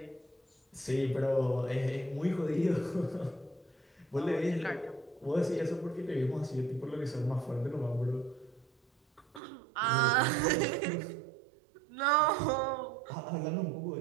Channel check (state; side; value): drops out; left; at 9.4 s